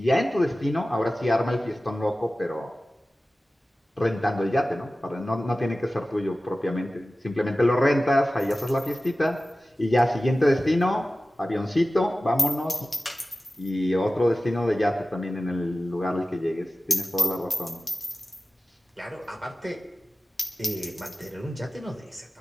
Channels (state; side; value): normal; both; correlation 0.96